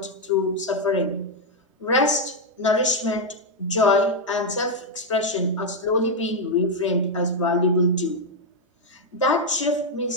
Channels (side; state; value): both; normal; correlation 0.01